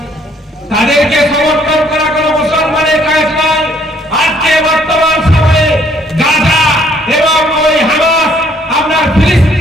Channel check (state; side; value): normal; both; correlation 0.64